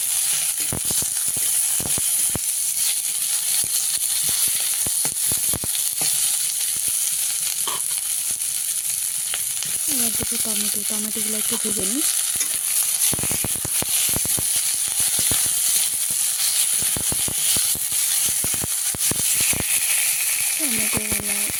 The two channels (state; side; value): identical; both; correlation 1.00